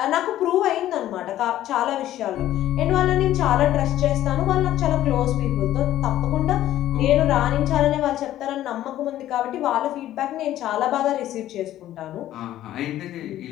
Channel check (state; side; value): quieter; right; 13.2 dB